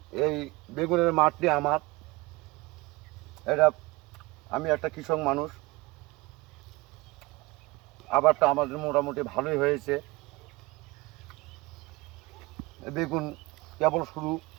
এই বেগুনের মাঠটি আমার। এটা আমি একটা কৃষক মানুষ। আবারটা আমাদের মোটামুটি ভালোই হয়েছে। বেগুন কেবল শুরু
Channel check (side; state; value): left; quieter; 22.2 dB